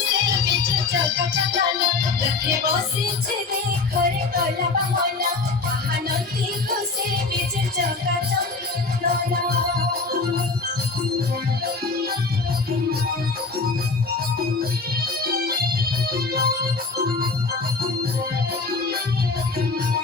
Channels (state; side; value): quieter; right; 4.0 dB